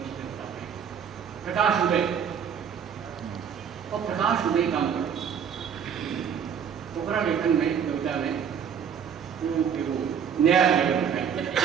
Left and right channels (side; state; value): left; quieter; 7.7 dB